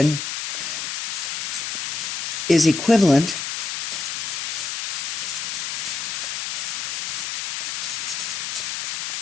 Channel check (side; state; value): left; noise; hiss, 2 dB below the sound